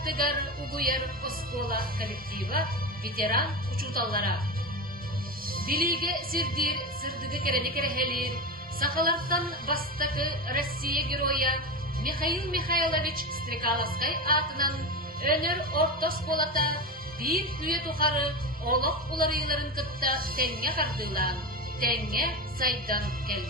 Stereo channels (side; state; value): both; normal; correlation 0.20